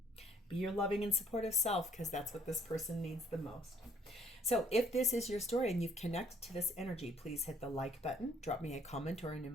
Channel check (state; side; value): normal; both; correlation 0.61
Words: be your loving and supportive self because that's what this person needs the most. So if this is your story and you've connected to this energy, please hit the like button, drop me a comment or an